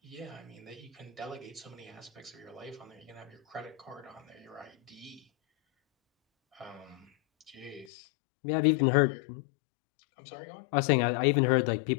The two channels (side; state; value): right; drops out; at 7.9 s